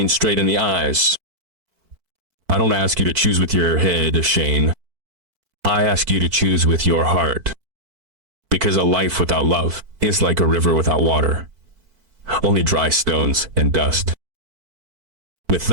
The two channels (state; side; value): late; left; 4.5 ms